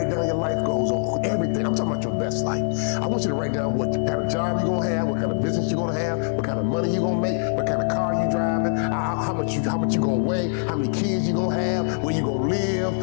down your life goals on everything. I'm talking about your best life. I want you to write down what kind of job you're going to have, what kind of business you're going to have, what kind of money you're going to make, what kind of car you're driving, how much you're going to weigh, how many kids you're going to have, where you're going to live.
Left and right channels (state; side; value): silent; right; digital silence